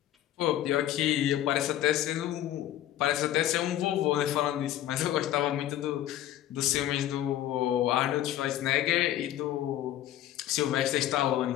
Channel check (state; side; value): quieter; right; 12.7 dB